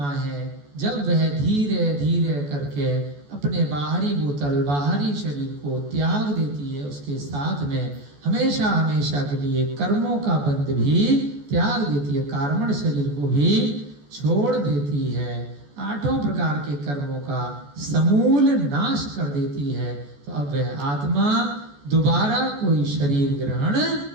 है, जब वह धीरे धीरे करके अपने बाहरी भूतल, बाहरी शरीर को त्याग देती है, उसके साथ में हमेशा हमेशा के लिए कर्मों का बंध भी त्याग देती है, कार्बन शरीर को भी छोड़ देती है, आठों प्रकार के कर्मों का समूल नाश कर देती है, तो अब वह आत्मा दोबारा कोई शरीर ग्रहण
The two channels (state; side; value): late; left; 14 ms